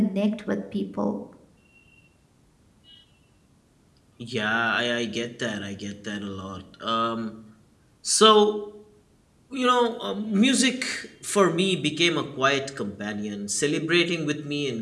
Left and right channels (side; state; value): both; identical; correlation 1.00